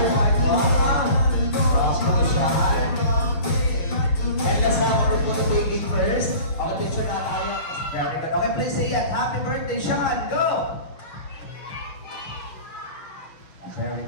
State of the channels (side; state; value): right; late; 6.5 ms